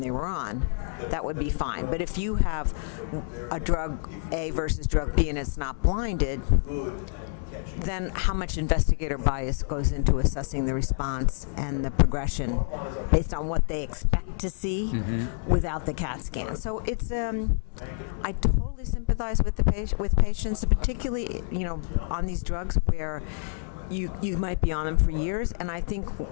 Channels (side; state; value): right; silent; 58 dB below the other